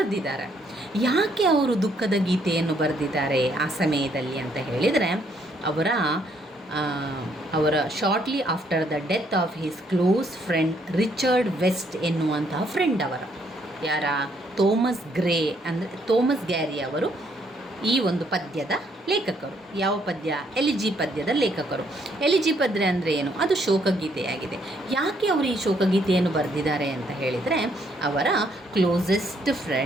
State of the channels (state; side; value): normal; both; correlation 0.70